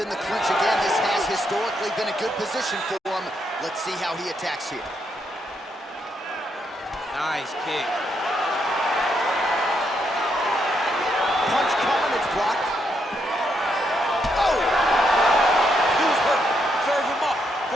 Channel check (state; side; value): normal; both; correlation 0.78